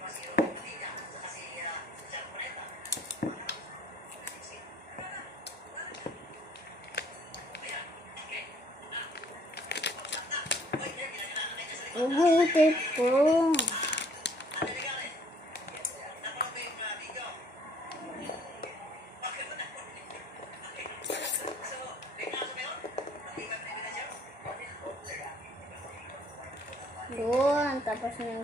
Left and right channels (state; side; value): normal; both; correlation 0.60